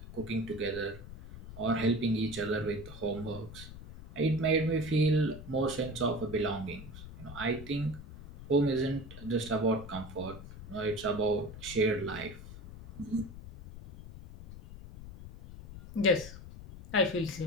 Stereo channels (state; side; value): noise; left; rumble, 14 dB below the sound